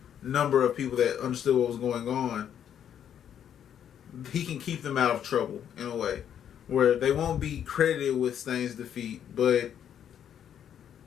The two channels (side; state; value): right; quieter; 9.3 dB